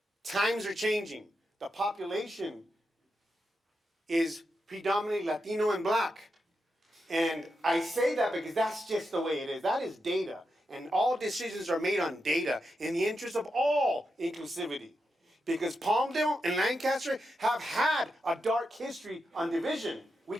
times are changing. The population is predominantly Latino and Black. And I say that because that's just the way it is. That is data. And all decisions are made on data in the interest of all inclusivity. Because Palmdale and Lancaster have had a dark history on division. We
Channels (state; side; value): normal; both; correlation 0.87